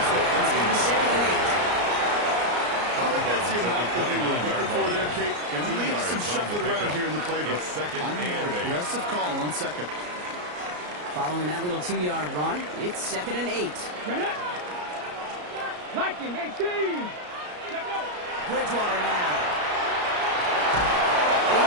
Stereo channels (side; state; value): left; late; 34 ms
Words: there. It's going to be 2nd and 8. I think that's the amount that they were looking for there, Kate. Going to leave some shuffling around here in the playbook. I'm an aggressive call on 2nd. Following that little 2-yard run, it's 2nd and 8. Viking 18. Bridgewater now. He